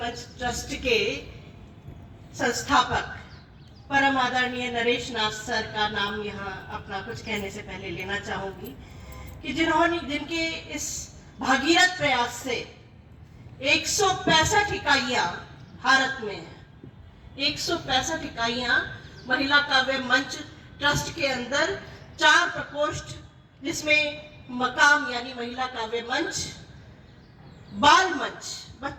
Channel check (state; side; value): identical; both; correlation 1.00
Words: मंच ट्रस्ट के संस्थापक परम आदरणीय नरेश नाथ सर का नाम यहाँ अपना कुछ कहने से पहले लेना चाहूंगी कि जिनके इस भागीरथ प्रयास से 165 इकाइयां भारत में है। 165 इकाइयां महिला काव्य मंच ट्रस्ट के अंदर 4 प्रकोष्ठ, जिसमें मकाम यानी महिला काव्य मंच, बाल मंच